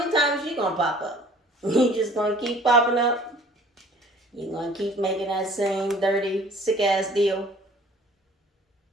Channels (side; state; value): both; normal; correlation 0.52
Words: times you gonna pop up? You just gonna keep popping up? You gonna keep making that same dirty, sick ass deal?